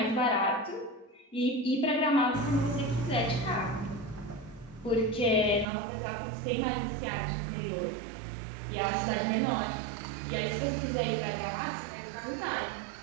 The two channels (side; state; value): left; drops out; at 5.7 s